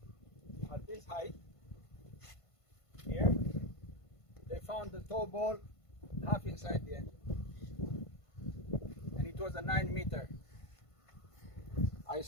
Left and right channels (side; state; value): right; late; 1.5 ms